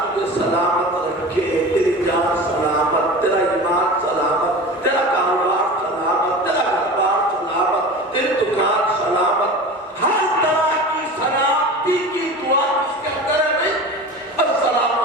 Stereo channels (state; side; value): normal; both; correlation 0.33